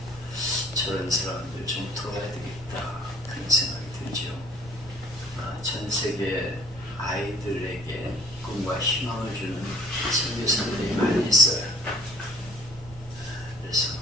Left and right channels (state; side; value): normal; both; correlation 0.54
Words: 저런 사람들 좀 도와야 되겠다 그런 생각이 들죠. 전 세계 아이들에게 꿈과 희망을 주는 선교사들이 많이 있어요. 그래서